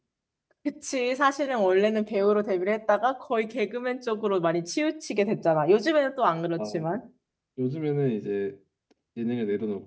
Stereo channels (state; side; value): identical; both; correlation 1.00